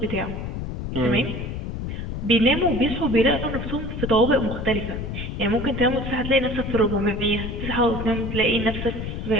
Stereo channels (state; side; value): noise; left; rumble, 5 dB below the sound